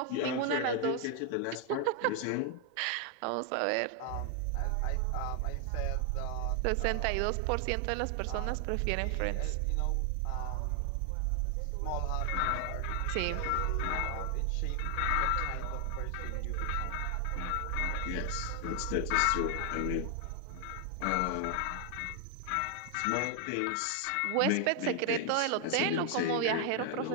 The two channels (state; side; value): different; both; correlation 0.00